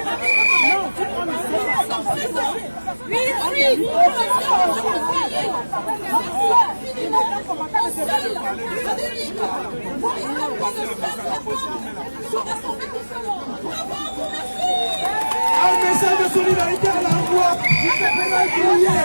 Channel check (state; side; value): inverted; both; correlation -1.00